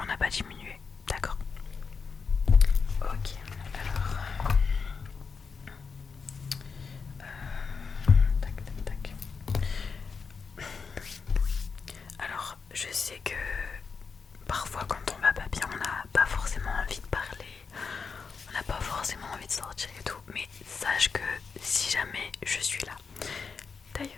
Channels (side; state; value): right; quieter; 5.3 dB